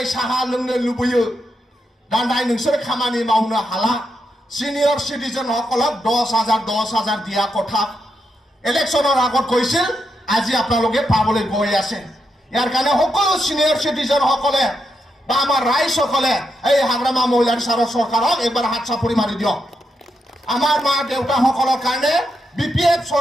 साहा लोंनो लुबैयो दान्दाय नोंसोर खामानि मावनो हाला सिनियर सिटिजन সকলক 10,000 দিয়া কথা ইলেকশনৰ আগত কৈছিল আজি আপোনালোকে পাবলৈ গৈ আছে ইয়াৰ কাৰণে সকলো সিনিয়ৰ সিটিজেন সকলে বা আমাৰ ৰাইজ সকলে এই হাগ্ৰামা মহিলাৰ চৰকাৰক একবাৰ হাত চাপৰি মাৰি দিয়ক আমাৰ মা দেউতা সকলৰ কাৰণে बीपीएफ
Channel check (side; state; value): both; normal; correlation 0.83